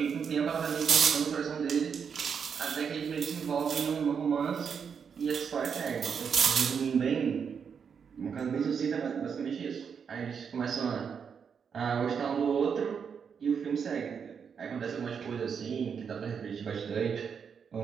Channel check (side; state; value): left; quieter; 6.7 dB